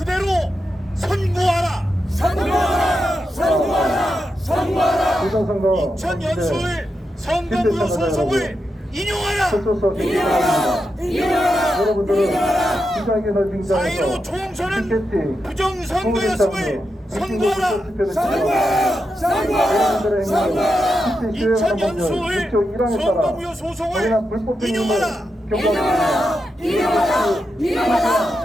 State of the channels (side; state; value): both; normal; correlation 0.87